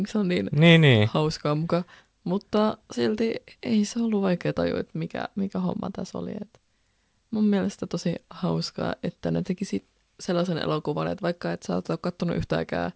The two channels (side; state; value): both; identical; correlation 1.00